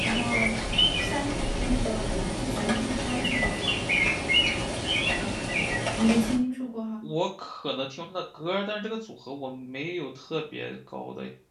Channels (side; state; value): both; identical; correlation 1.00